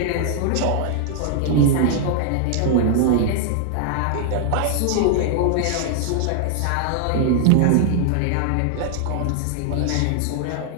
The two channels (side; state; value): both; different; correlation 0.00